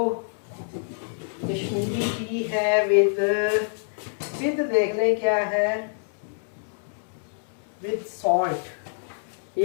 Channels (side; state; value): right; silent; digital silence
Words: कश्मीरी टी है विद देख लें क्या है, विद सॉल्ट।